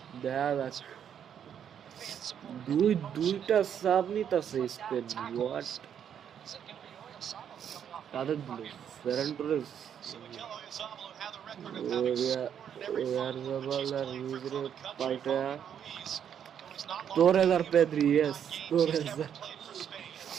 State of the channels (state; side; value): quieter; left; 8.8 dB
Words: দুইটা সাব নিতেছে স্পেন। হোয়াট কাদের দিল? ফেরান টোরেস, পাল্টা তোরেজ আর পেদ্রি। ইয়েস তোরেজ।